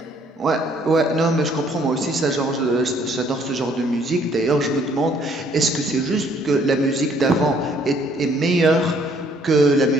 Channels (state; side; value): normal; both; correlation 0.63